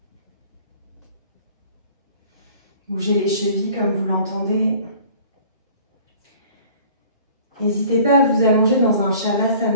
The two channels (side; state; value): both; inverted; correlation -0.50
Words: Bougez les chevilles comme vous l'entendez. N'hésitez pas à vous allonger dans un